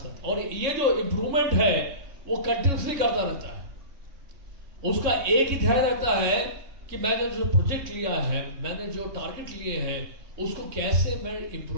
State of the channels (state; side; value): late; left; 3.6 ms